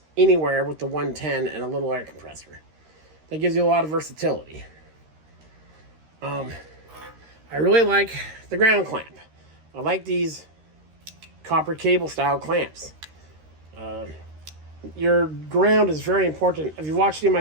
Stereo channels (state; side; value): late; left; 13 ms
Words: anywhere with the 110 and a little air compressor. That gives you a lot of versatility. I really like the ground clamp. I like these copper cable style clamps. Your ground is very important. If you watched any of my